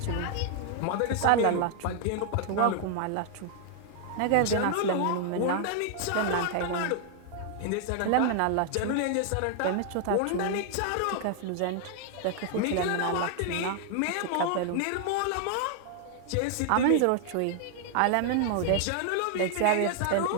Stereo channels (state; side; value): different; both; correlation 0.00